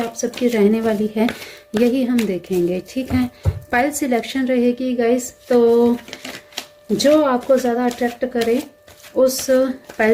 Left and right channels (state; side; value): identical; both; correlation 1.00